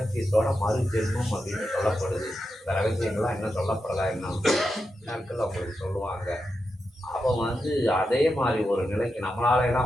மறு ஜென்மம் அப்படின்னு சொல்லப்படுது. இந்த ரகசியங்கள்லாம் இன்னும் சொல்லப்படலை. இன்னும் நாட்கள் அவங்களுக்கு சொல்லுவாங்க. அப்போ வந்து அதே மாதிரி ஒரு நிலைக்கு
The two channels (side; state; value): both; normal; correlation 0.88